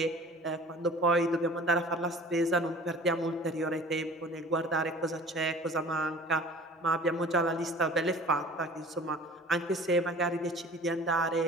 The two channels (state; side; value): normal; both; correlation 0.44